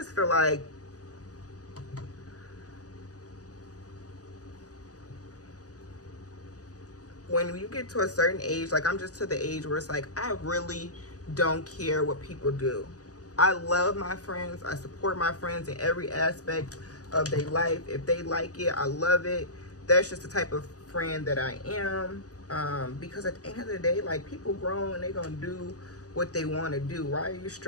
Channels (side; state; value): right; late; 0.67 ms